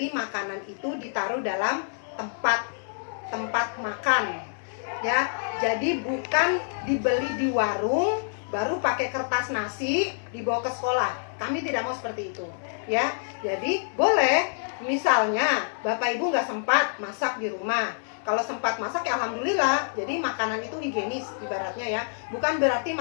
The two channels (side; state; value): right; silent; digital silence